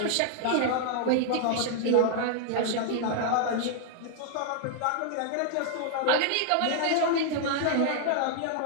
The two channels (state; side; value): different; both; correlation -0.01